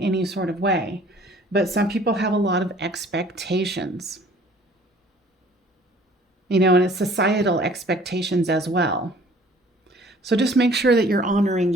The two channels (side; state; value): both; normal; correlation 0.53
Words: sort of way, but some people have a lot of expectations. And it's societal expectations as well. So just make sure that you're honoring